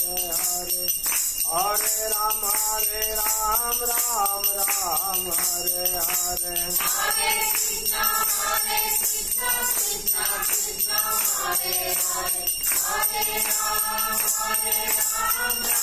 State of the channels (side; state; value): both; identical; correlation 1.00